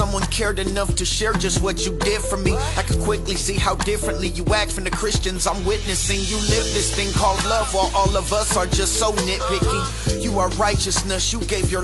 cared enough to share just what you did for me. I could quickly see how differently you act from the Christians I'm witnessing. You live this thing called love while all of us are just so nitpicky. You are righteousness, you gave your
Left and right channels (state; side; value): identical; both; correlation 1.00